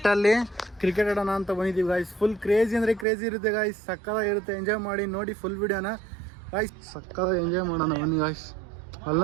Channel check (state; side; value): drops out; left; at 3.1 s